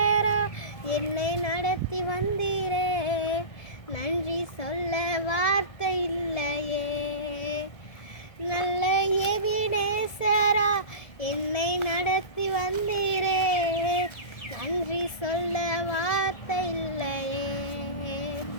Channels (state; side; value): late; right; 1.7 ms